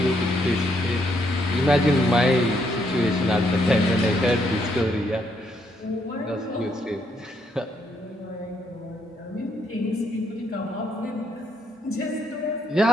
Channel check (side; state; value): both; normal; correlation 0.74